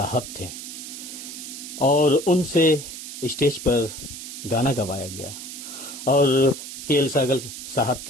थे, और उनसे स्टेज पर गाना गवाया गया। और के.एल. सहगल साहब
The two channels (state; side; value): noise; right; hiss, 10 dB below the sound